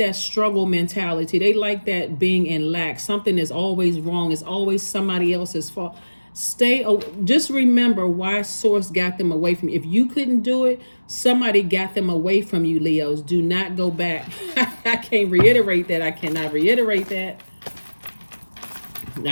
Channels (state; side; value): inverted; both; correlation -1.00